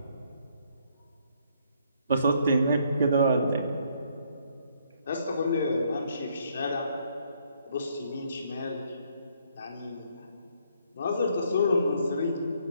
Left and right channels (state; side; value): inverted; both; correlation -0.69